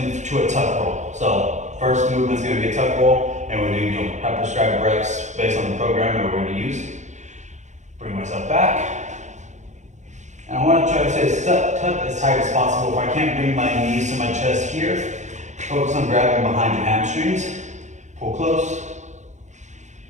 a tuck roll. So first movement is going to be a tuck roll, and we're going to have prescribed reps based on the program that we're going to use. Bring myself back. And I want to try to stay tuck as tight as possible. If I can't bring my knees to my chest here, focus on grabbing behind your hamstrings. Pull close.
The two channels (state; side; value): late; left; 0.34 ms